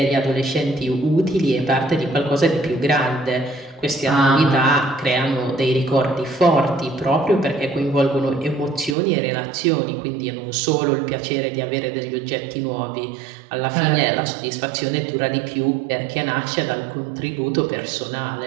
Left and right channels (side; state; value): left; drops out; at 9.0 s